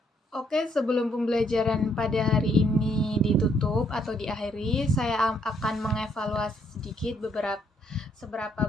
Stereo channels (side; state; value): both; normal; correlation 0.70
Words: Oke, sebelum pembelajaran pada hari ini ditutup atau diakhiri, saya akan mengevaluasi sedikit seberapa